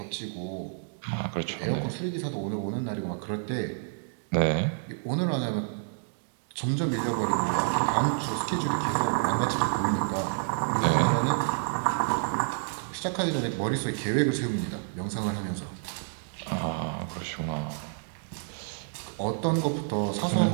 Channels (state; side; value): silent; left; digital silence